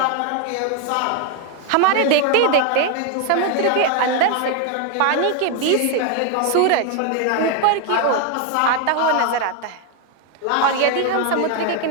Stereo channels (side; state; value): both; different; correlation 0.01